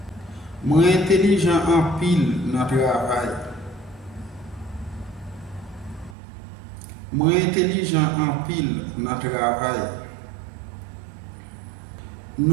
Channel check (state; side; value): drops out; left; at 6.2 s